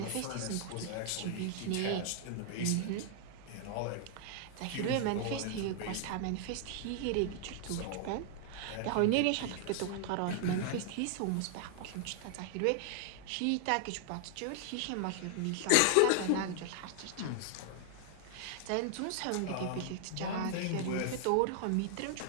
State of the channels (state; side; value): different; both; correlation 0.00